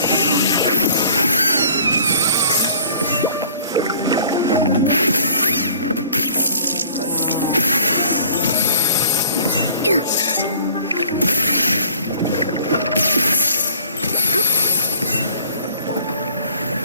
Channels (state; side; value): inverted; both; correlation -0.52